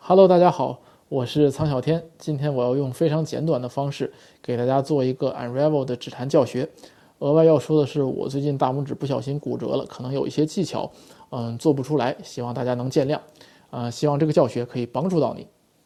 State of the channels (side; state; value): both; identical; correlation 1.00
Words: Hello，大家好，我是苍小天。今天我要用非常简短的方式给大家做一个 Unravel 的指弹教学。额外要说的是，我最近大拇指不小心骨折了，可能有一些技巧，做不出来，希望大家能见谅。希望这个教学可以帮助到你。